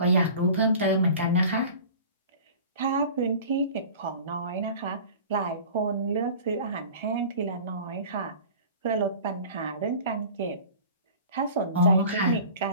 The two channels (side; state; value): both; inverted; correlation -0.41